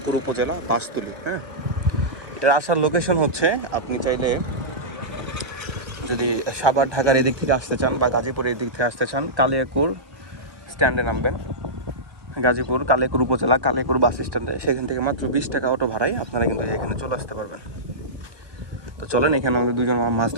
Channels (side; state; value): left; late; 1.2 ms